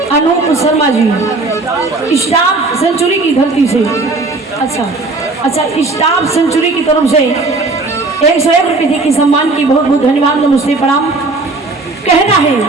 अनूप शर्मा जी स्टाफ सेंचुरी की धरती से अच्छा स्टाफ सेंचुरी की तरफ से 101 रुपये के सम्मान की बहुत बहुत धन्यवाद नमस्ते प्रणाम कहना है।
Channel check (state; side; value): quieter; left; 3.4 dB